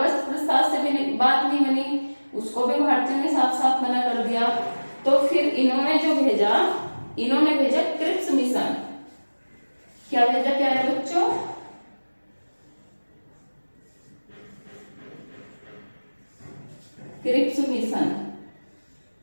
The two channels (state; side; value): inverted; both; correlation -1.00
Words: प्रस्ताव से भी बात नहीं बनी, उसको भी भारतीयों ने साफ साफ मना कर दिया। तो फिर इन्होंने जो भेजा, इन्होंने भेजा क्रिप्स मिशन। क्या भेजा प्यारे बच्चों? Cripps mission.